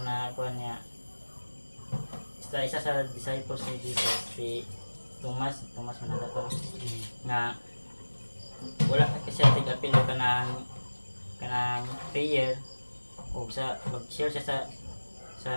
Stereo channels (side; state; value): both; inverted; correlation -1.00